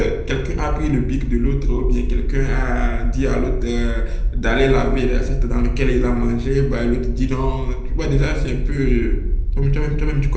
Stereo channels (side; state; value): both; identical; correlation 1.00